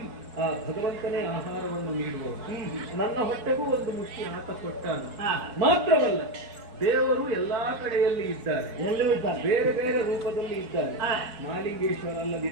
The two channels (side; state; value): left; late; 4.8 ms